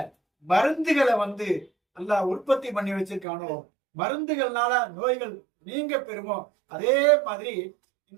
மருந்துகளை வந்து அல்லாஹ் உற்பத்தி பண்ணி வச்சிருக்கானோ, மருந்துகள்னால நோய்கள் நீங்க பெறுமோ, அதே மாதிரி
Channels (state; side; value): drops out; left; at 3.2 s